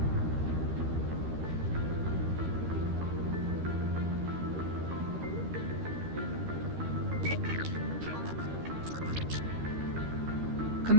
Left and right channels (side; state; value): left; late; 13 ms